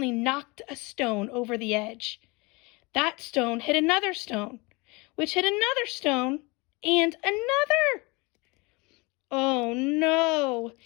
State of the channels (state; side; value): quieter; right; 26.2 dB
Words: knocked a stone over the edge. That stone hit another stone, which hit another stone, and another. Oh no,